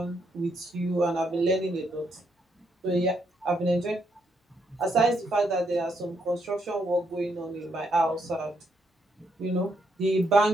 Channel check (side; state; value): both; normal; correlation 0.76